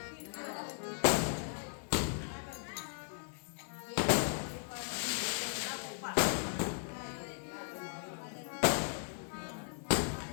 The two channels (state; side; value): silent; right; digital silence